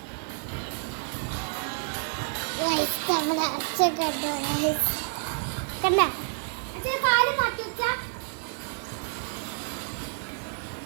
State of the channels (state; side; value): silent; left; 57 dB below the other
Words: നമ്മുടെ അച്ഛ കണ്ടോ കണ്ട അച്ഛൻ കാല് മാറ്റി വെച്ചാ